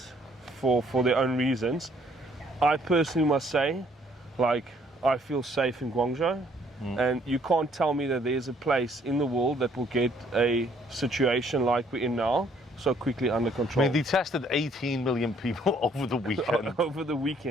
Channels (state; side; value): normal; both; correlation 0.64